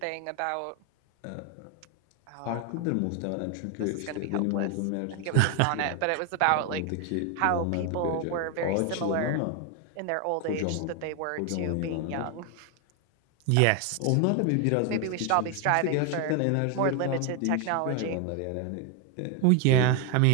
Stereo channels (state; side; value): different; both; correlation 0.01